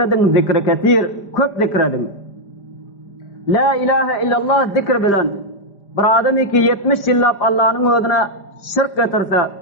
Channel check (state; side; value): late; right; 5.0 ms